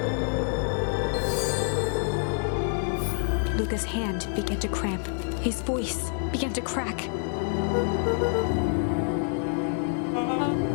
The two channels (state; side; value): silent; right; 60 dB below the other